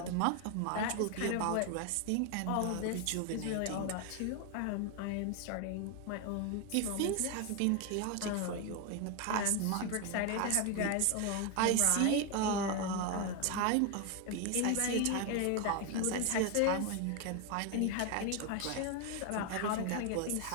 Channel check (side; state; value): both; different; correlation 0.01